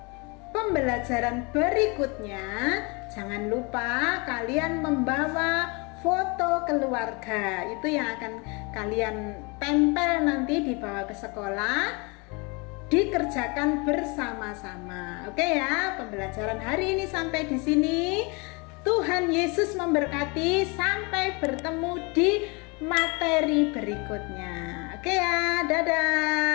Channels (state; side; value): quieter; right; 29.7 dB